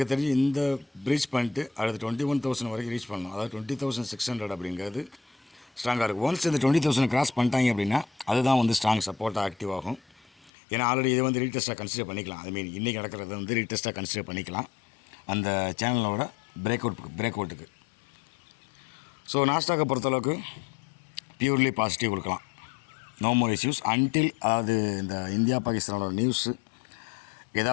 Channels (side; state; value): right; drops out; at 10.5 s